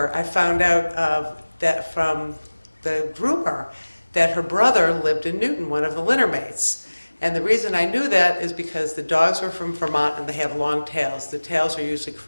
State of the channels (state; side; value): inverted; both; correlation -1.00